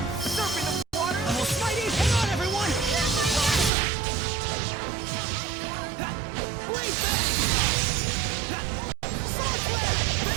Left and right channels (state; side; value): drops out; left; at 3.7 s